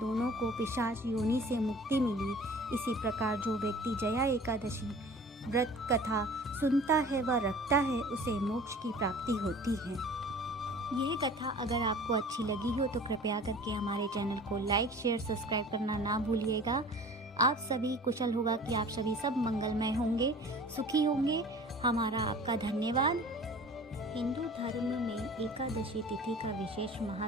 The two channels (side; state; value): both; normal; correlation 0.44